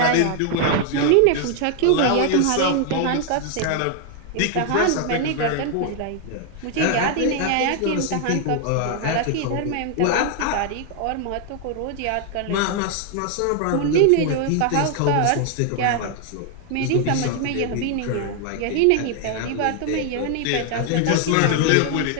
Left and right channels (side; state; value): both; different; correlation 0.00